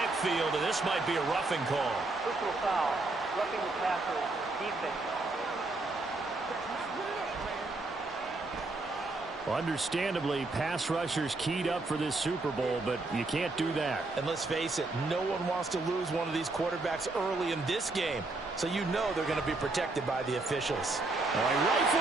and this might be a roughing call. Personal foul, roughing the passer, defense. Understandably, pass rushers keyed up for this Super Bowl, but you can't do that. And let's face it, no one wants to lose one of these quarterbacks early in this game. So you know they're going to be protected by the officials. He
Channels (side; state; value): left; quieter; 3.2 dB